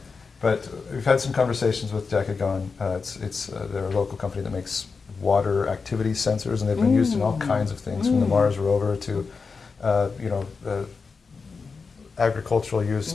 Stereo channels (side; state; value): right; quieter; 4.8 dB